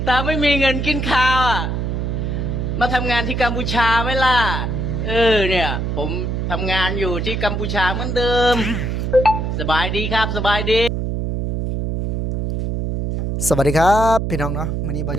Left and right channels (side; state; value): right; noise; hum, 1 dB below the sound